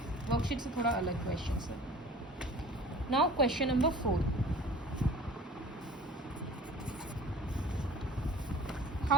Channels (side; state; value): both; normal; correlation 0.45